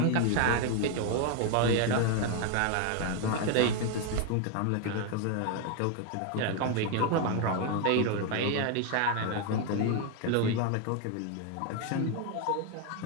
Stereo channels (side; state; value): both; different; correlation 0.01